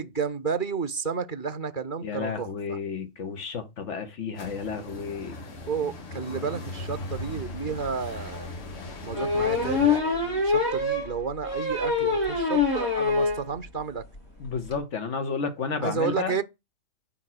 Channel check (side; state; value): right; late; 2.3 ms